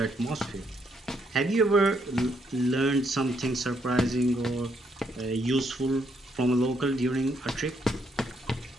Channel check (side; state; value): both; normal; correlation 0.74